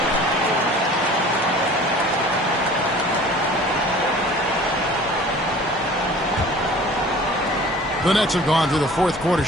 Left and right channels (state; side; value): normal; both; correlation 0.46